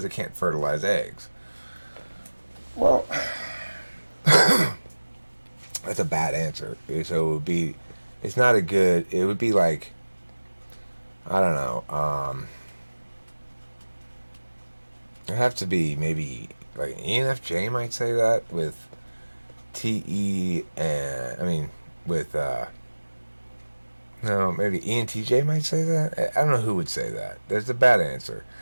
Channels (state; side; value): inverted; both; correlation -1.00